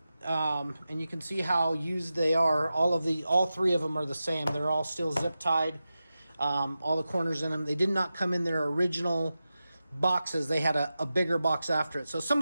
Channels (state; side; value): inverted; both; correlation -0.93